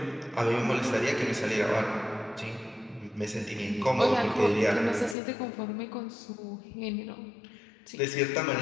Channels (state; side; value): drops out; right; at 5.2 s